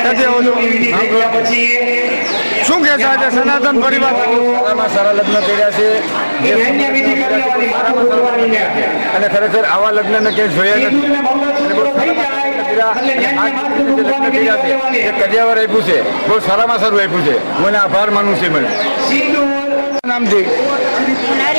આવો છો? શું કહે છે આજે સનાતન પરિવાર સારામાં સારા લગ્ન કર્યા છે અને ખરેખર આવા લગ્નને ક્યાંય જોયા નથી અને બહુ લગ્ન કર્યા છે જે કડિયાવર આપ્યું છે બહુ સારામાં સારું આપ્યું છે. હું એને આભાર માનું છું. મને નામથી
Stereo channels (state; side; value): inverted; both; correlation -1.00